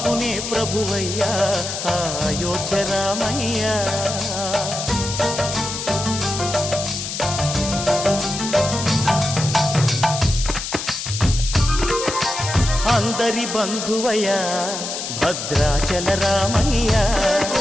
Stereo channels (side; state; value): left; noise; hiss, 5 dB below the sound